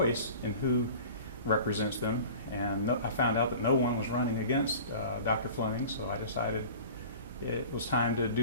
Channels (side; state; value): both; inverted; correlation -0.41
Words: in who represents them, and I found out that no one was running against Dr. Fleming, so I decided it was time to